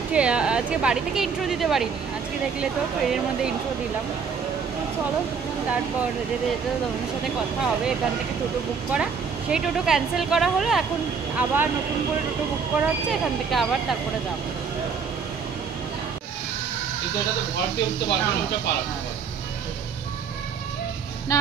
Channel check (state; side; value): quieter; left; 5.9 dB